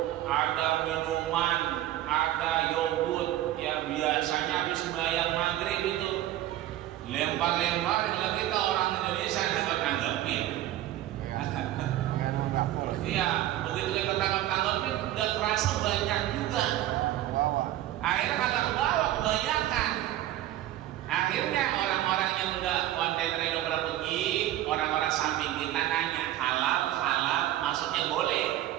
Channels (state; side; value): quieter; left; 13.8 dB